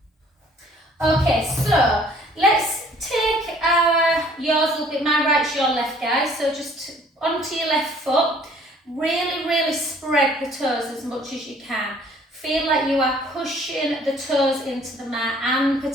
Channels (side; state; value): both; normal; correlation 0.57